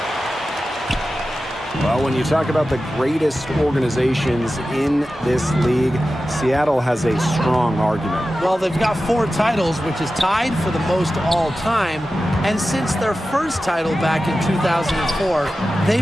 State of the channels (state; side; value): normal; both; correlation 0.94